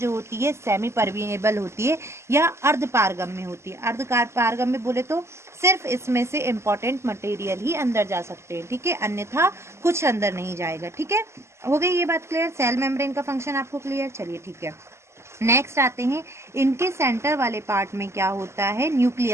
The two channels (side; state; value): left; late; 0.13 ms